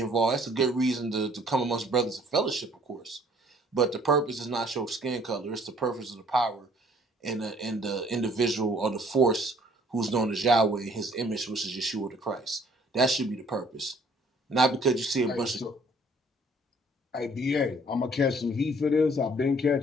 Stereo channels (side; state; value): both; normal; correlation 0.58